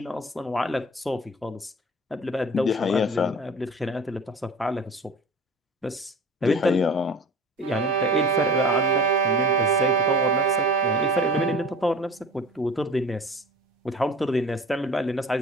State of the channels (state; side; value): normal; both; correlation 0.42